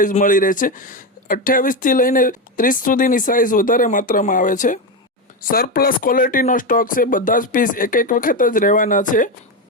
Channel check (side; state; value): both; normal; correlation 0.13